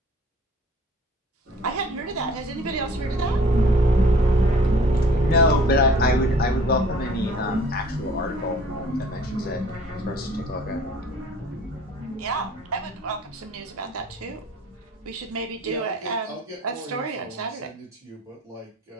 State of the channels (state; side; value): normal; both; correlation 0.51